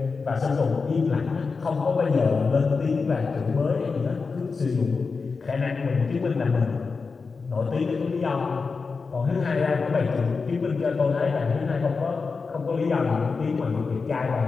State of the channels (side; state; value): right; quieter; 4.7 dB